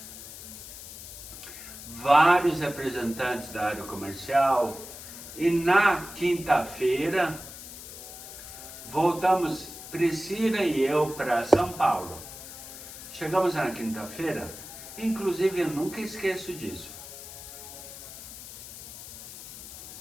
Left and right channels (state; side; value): noise; left; hiss, 13 dB below the sound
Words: Vários representantes da área comercial. E na quinta-feira, voltamos, Priscila e eu, para São Paulo. Chegamos na quinta-feira, inclusive eu nunca esqueço disso.